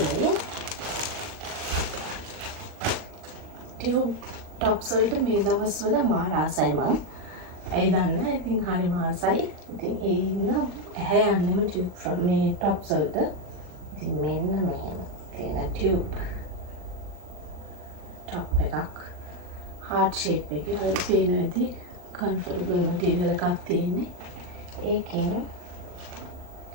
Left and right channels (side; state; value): left; late; 40 ms